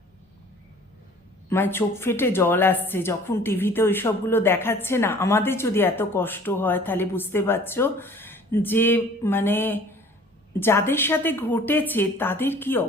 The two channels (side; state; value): both; normal; correlation 0.50